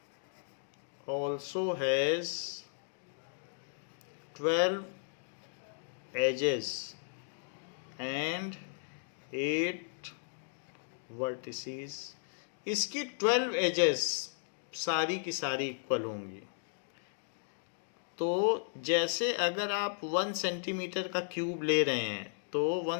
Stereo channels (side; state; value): right; silent; digital silence